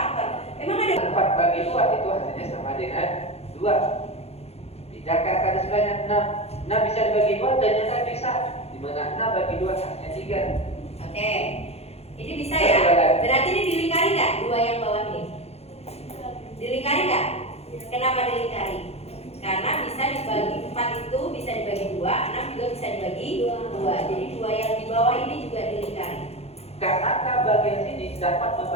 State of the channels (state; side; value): late; right; 0.30 ms